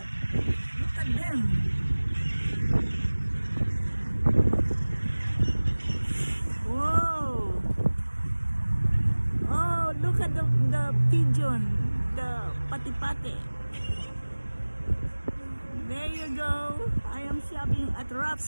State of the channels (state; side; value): inverted; both; correlation -1.00